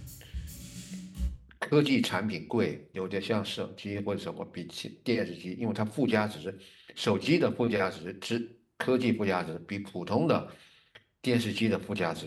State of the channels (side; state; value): both; identical; correlation 1.00